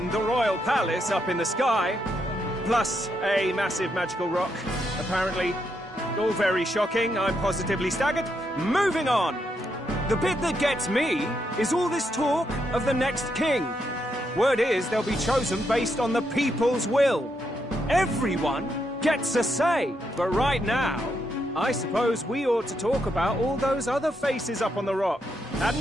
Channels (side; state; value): both; normal; correlation 0.80